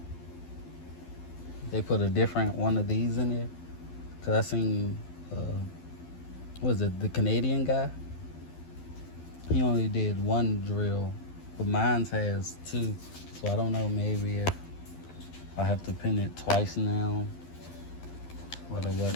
they put a different one of these in there. Cause I seen, what was it, the Canadian guy? He only did one drill, but mine has two. So I don't know, maybe if I have to pin it twice now, or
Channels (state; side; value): late; right; 12 ms